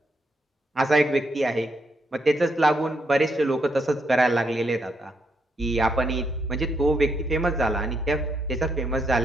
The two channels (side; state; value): both; normal; correlation 0.78